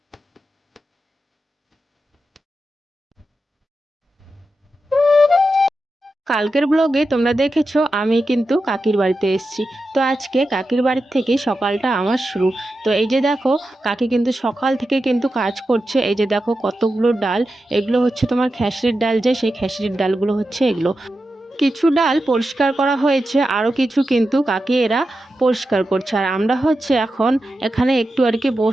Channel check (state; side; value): normal; both; correlation 0.90